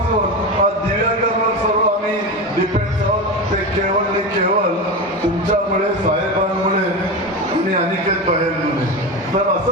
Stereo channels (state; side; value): normal; both; correlation 0.21